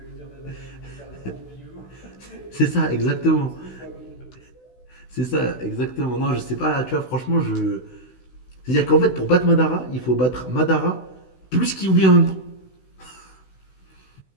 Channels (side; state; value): right; late; 16 ms